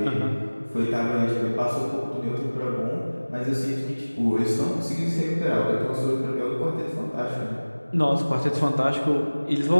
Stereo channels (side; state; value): both; inverted; correlation -1.00